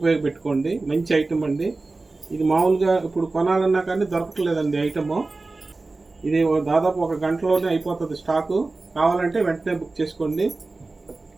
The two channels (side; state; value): left; quieter; 3.4 dB